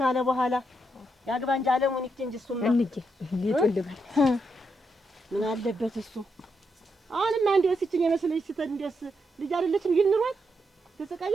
በኋላ ያግባ እንጂ አለሙን ይክንጂ እሱማ እንዴ ይጥልባል ምን አለበት እሱ። አሁንማ እንደው ሲችኝ የመስለሽ ስተን እንደስ ልጅ አይደለችም ይልንሯል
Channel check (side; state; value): both; normal; correlation 0.81